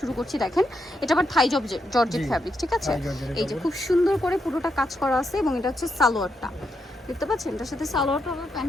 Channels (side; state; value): both; normal; correlation 0.82